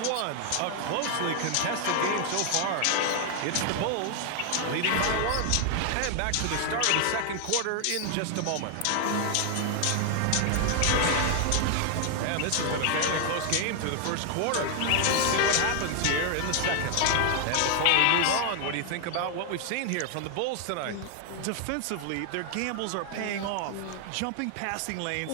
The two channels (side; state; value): both; different; correlation 0.00